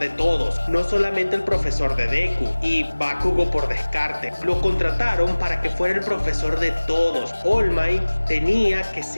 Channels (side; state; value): both; inverted; correlation -1.00